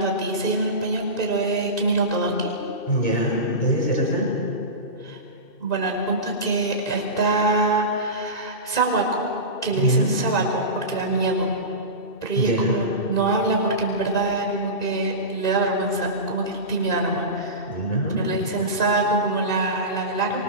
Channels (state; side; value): late; right; 2.7 ms